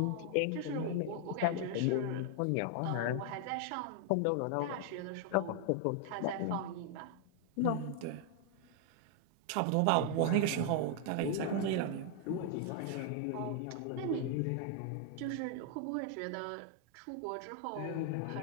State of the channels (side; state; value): both; different; correlation 0.00